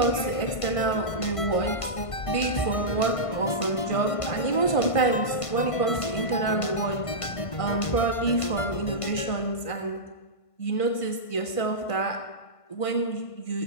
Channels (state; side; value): late; right; 1.5 ms